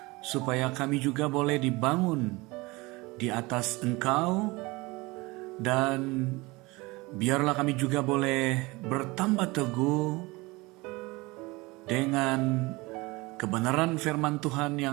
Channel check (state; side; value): quieter; left; 23.2 dB